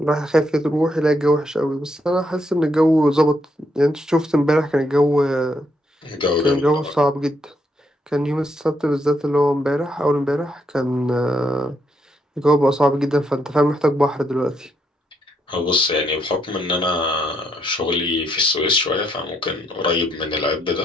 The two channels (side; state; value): both; normal; correlation 0.76